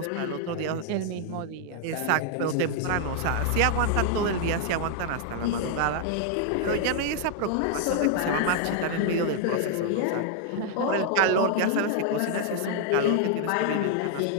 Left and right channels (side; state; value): both; different; correlation 0.00